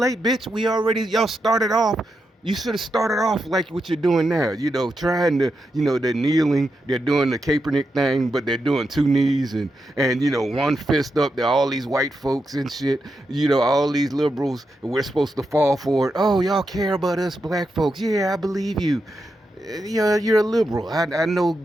bitch. Y'all started off. You should have started off like what you're doing now. Trying to, they're kneeling, they're doing the Kaepernick thing, but they're doing two knees and one fist up. They're all these white folks and shit. All these liberals. We're supposed to fall for it. Oh, y'all care about us black folks? Yeah, I believe you. You're a liberal. I know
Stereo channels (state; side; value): normal; both; correlation 0.86